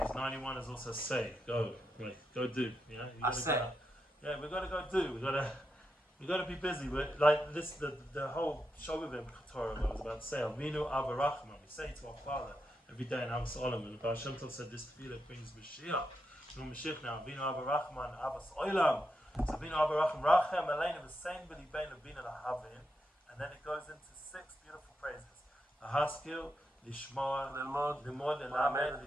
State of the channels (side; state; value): both; normal; correlation 0.85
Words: 91 is also say, go do. Yeah, we gotta go do. We gotta be busy. We're, like this, the whole Shogavim Torah I was about to say. Avinu Avarachman. We say to our Father every day in Avos Olam, and the Baal Shem Tov said this tefillah brings Mashiach. No Mashiach now. Avinu Avarachman Avos Olam. So Avinu Avarachman Rachem Aleinu V'Sein B'Li Bein Avinu Lahavin, and then it goes into 6 beautiful phrases. Haskil, Lishmor, Limod, Lamed,